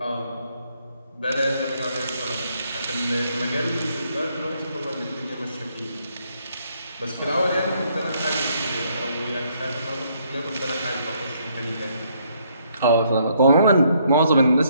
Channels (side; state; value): both; inverted; correlation -0.70